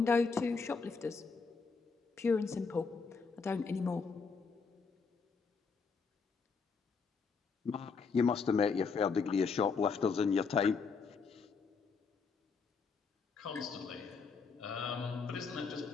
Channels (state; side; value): quieter; right; 5.1 dB